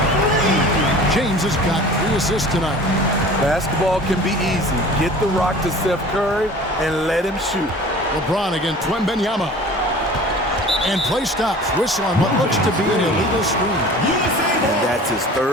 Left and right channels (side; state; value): both; normal; correlation 0.43